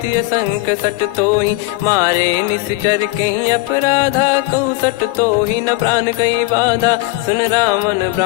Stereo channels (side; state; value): right; quieter; 20.2 dB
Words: संक सट तोहि। मारे निश्चर कहीं अपराधा, कहूँ सट तोहि न प्राण कहीं बाधा। सुन रावण